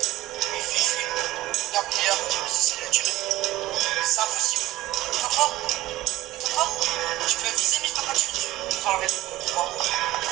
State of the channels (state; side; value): quieter; left; 16.8 dB